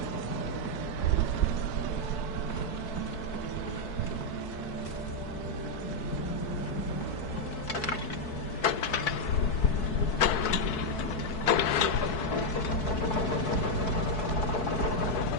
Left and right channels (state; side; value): late; right; 4.6 ms